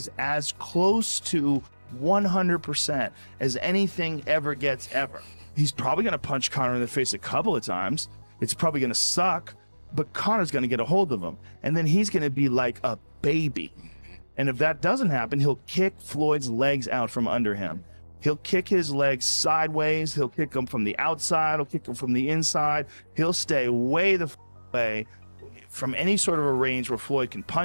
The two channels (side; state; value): both; inverted; correlation -1.00